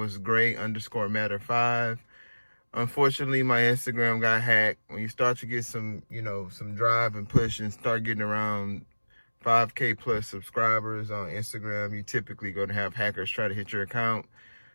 gray_matter5. Unfortunately, my Instagram got hacked. When you start to get some, some drive and push and start getting around 5K plus subscribers on Instagram, you typically going to have hackers try to hit your account.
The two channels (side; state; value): both; inverted; correlation -1.00